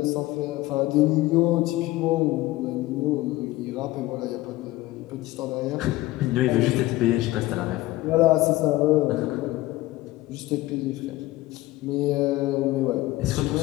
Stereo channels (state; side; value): quieter; right; 18.0 dB